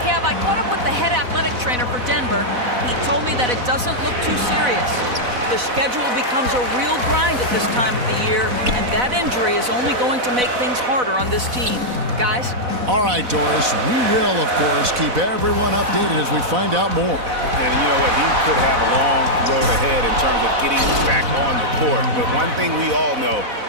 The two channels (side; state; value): left; late; 4.0 ms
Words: Kev, I caught up with the head athletic trainer for Denver. He told me that it doesn't look too serious. The schedule becomes a real grind at this time of the year, and that injury is only going to make things harder on this team. Guys? All right, Doris. We will, of course, keep everyone updated as we find out more. And you know what? He could have a long road ahead in terms of getting back on the court. But one thing we all know,